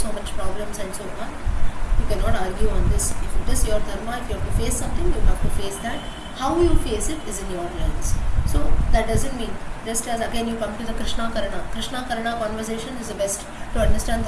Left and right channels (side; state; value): both; identical; correlation 1.00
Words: so much problems and so on. You cannot argue on this. If it is your dharma, if you have to face something, you have to face that. How you face it is in your lens. So that doesn't mean, just as again you come to the Krishna Karna conversation is the best to understand